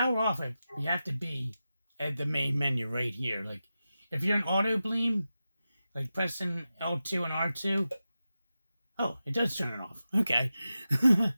off it, you have to be at the main menu right here. Like if you're in Autobleem, like pressing L2 and R2, oh, it does turn it off. Okay.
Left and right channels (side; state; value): both; inverted; correlation -0.92